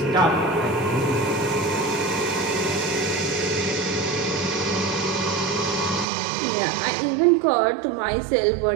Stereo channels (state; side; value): drops out; left; at 6.1 s